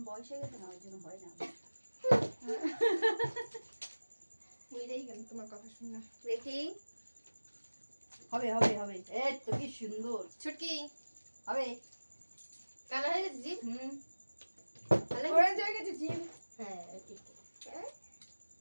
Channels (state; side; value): inverted; both; correlation -1.00